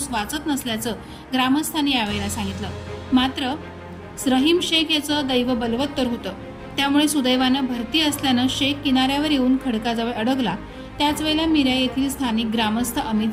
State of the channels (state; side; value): identical; both; correlation 1.00